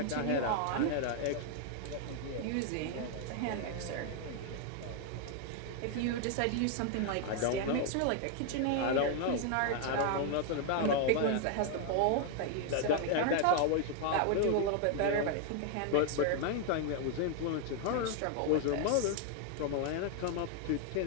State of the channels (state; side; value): different; both; correlation 0.00